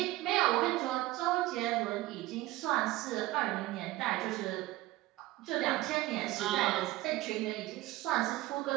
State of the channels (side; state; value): left; quieter; 17.5 dB